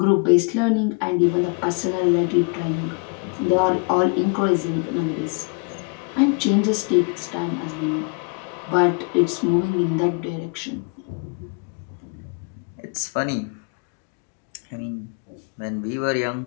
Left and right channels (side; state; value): right; quieter; 34.0 dB